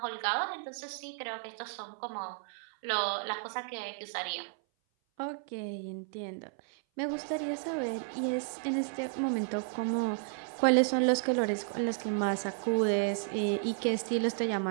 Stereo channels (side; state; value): left; silent; 56 dB below the other